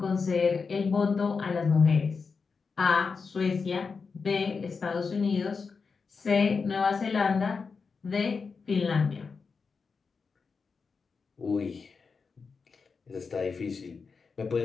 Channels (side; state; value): right; quieter; 5.0 dB